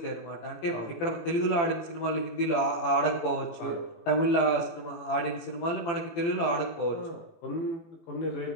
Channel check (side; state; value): right; late; 18 ms